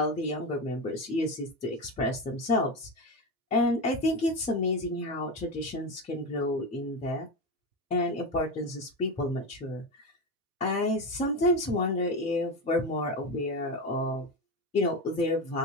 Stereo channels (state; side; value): normal; both; correlation 0.18